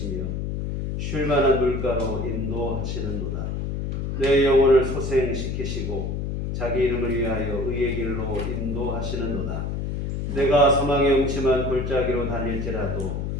쉴만한 물가로 인도하시는도다. 내 영혼을 소생시키시고 자기 이름을 위하여 의의 길로 인도하시는도다. 내가 사망의 음침한 골짜기로 다닐지라도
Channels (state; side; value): noise; left; hum, 3 dB below the sound